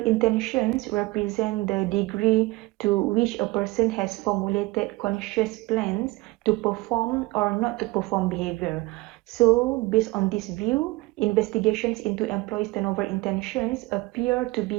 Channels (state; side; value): quieter; left; 21.8 dB